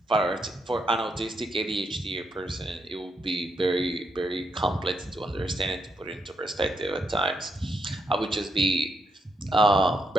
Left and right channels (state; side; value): normal; both; correlation 0.79